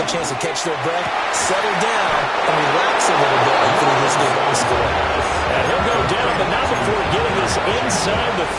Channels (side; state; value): both; identical; correlation 1.00